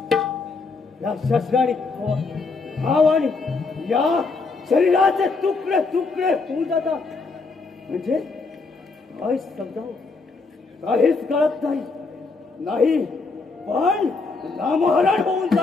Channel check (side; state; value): right; quieter; 4.1 dB